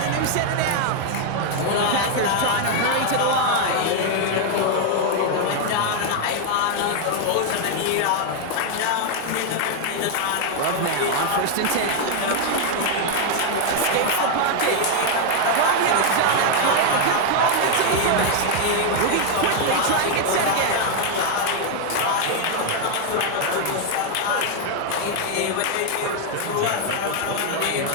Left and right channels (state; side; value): different; both; correlation 0.00